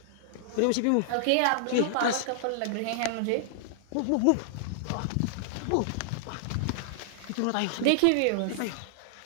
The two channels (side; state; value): both; different; correlation -0.01